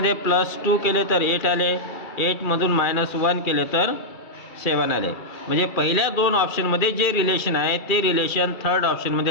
+2 केले तर 8 आले. 8मधून -1 केले तर 7 आले. म्हणजे पहिल्या 2 ऑप्शनमध्ये जे रिलेशन आहे ते रिलेशन थर्ड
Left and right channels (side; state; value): right; late; 2.4 ms